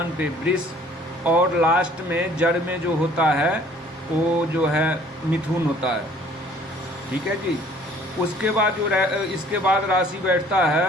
पे वृष, और लास्ट में जड़ में जो होता है वो जो है मिथुन होता है। ठीक है जी। उसके बाद जो इसके बाद राशि बैठता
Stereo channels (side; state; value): both; normal; correlation 0.55